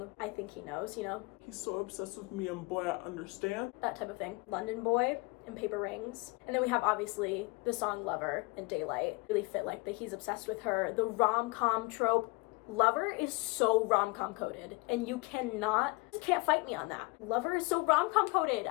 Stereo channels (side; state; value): right; quieter; 26.3 dB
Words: I Think He Knows, you know? He's so obsessed with me and boy, I understand. That type of thing. London Boy and Paper Rings. And then we have obviously the song Lover and Daylight. Really fit like the He's Obsessed with Her, the rom-com trope. Lover is so rom-com coded, and you can't fight me on that. Lover is so rom-com coded.